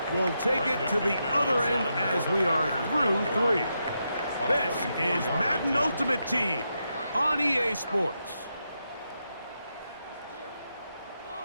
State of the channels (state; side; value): inverted; both; correlation -0.84